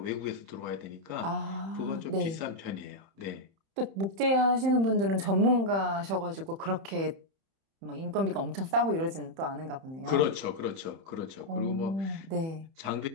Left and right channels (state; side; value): late; left; 31 ms